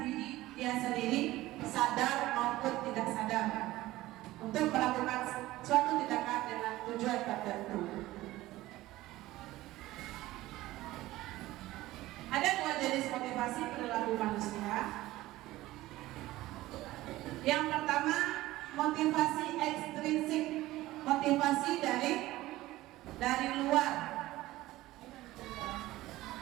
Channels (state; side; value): quieter; left; 17.0 dB